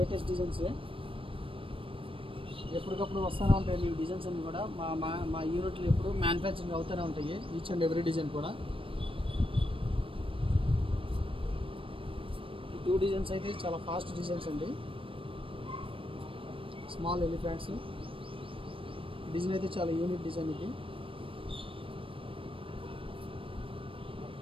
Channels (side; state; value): left; late; 0.26 ms